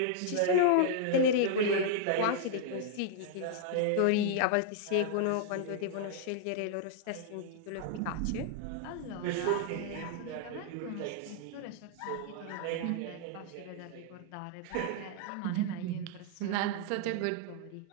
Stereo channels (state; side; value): different; both; correlation -0.01